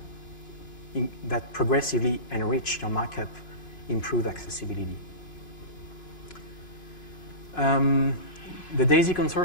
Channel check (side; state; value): right; late; 2.9 ms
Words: progressively enrich your markup, improve accessibility. The DAISY